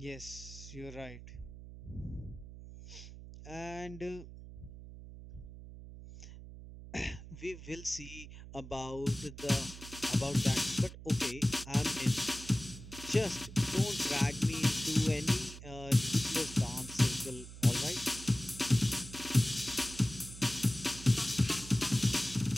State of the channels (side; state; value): right; noise; hum, 14 dB below the sound